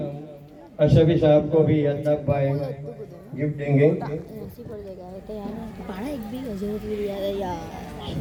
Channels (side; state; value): both; identical; correlation 1.00